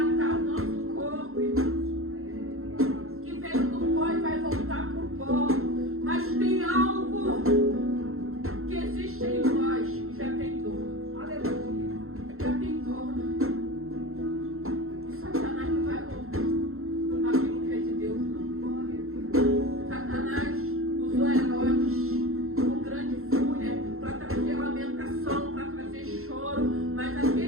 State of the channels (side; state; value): left; late; 0.62 ms